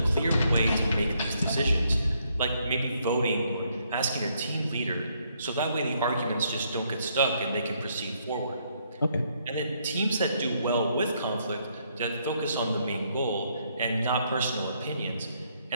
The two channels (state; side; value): inverted; both; correlation -0.72